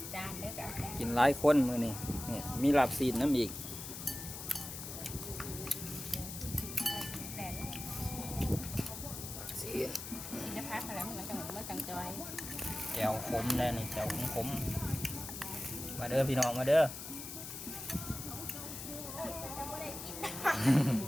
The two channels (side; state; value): left; noise; hiss, 9 dB below the sound